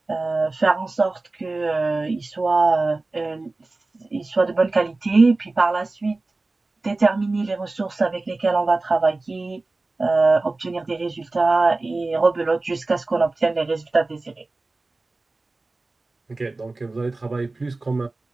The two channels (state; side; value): quieter; left; 3.3 dB